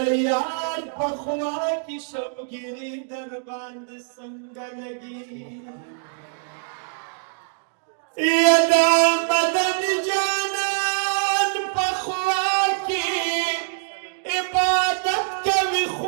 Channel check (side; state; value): left; silent; digital silence